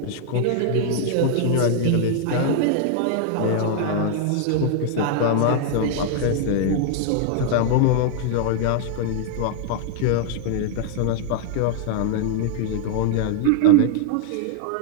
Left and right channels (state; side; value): different; both; correlation 0.00